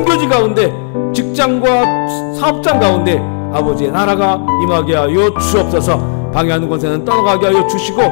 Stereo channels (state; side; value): silent; right; 69 dB below the other